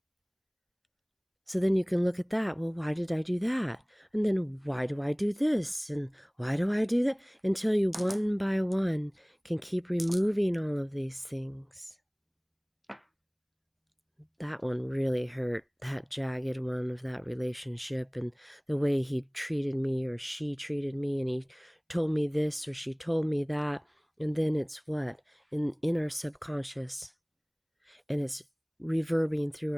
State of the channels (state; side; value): identical; both; correlation 1.00